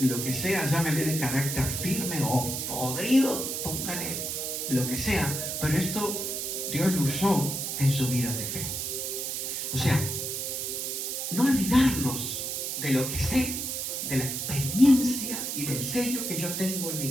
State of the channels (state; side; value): noise; right; hiss, 3 dB below the sound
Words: que sea, llámele de carácter firme o podrido, póngale lo que sea, pero esto Dios lo usó en su vida de fe. O sea, no olvidarnos de lo que sé, de la experiencia y del sello que yo tengo en mi